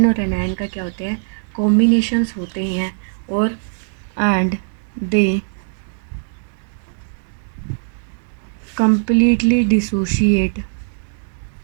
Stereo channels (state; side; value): silent; left; 66 dB below the other